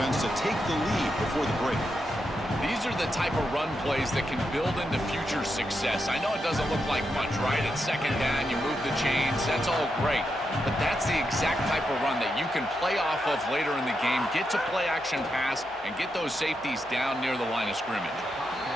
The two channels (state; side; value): noise; right; hum, 25 dB below the sound